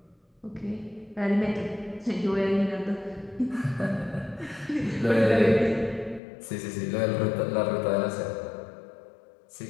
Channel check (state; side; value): drops out; right; at 6.2 s